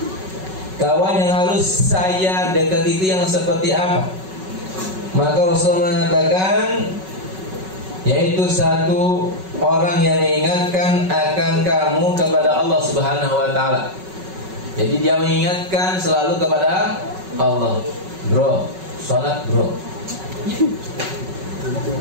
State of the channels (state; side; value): late; left; 5.3 ms